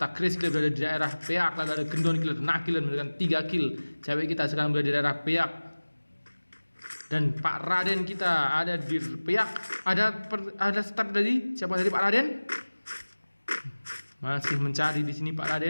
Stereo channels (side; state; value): both; inverted; correlation -1.00